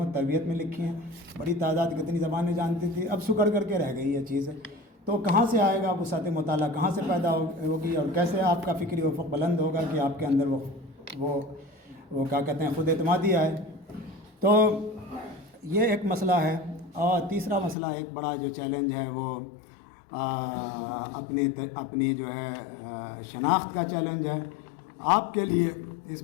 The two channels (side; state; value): right; drops out; at 17.8 s